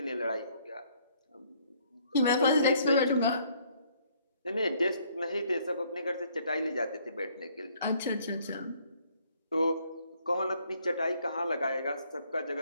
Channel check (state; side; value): inverted; both; correlation -0.65